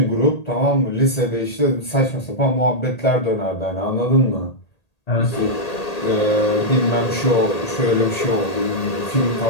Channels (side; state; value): right; late; 1.8 ms